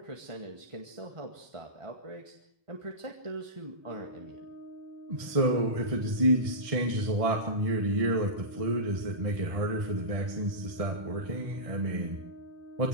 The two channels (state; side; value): late; left; 1.6 ms